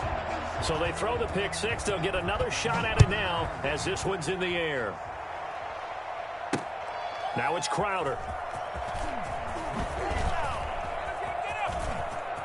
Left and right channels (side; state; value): both; identical; correlation 1.00